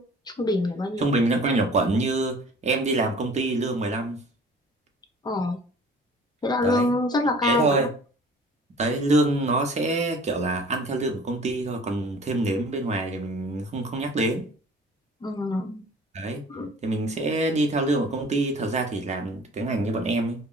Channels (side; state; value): both; normal; correlation 0.48